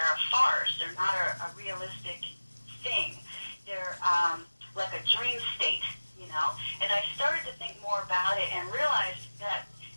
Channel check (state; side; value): inverted; both; correlation -1.00